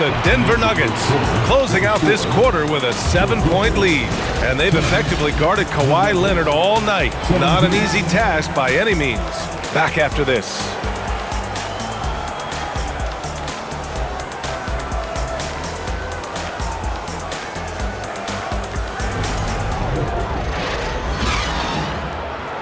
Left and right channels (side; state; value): both; identical; correlation 1.00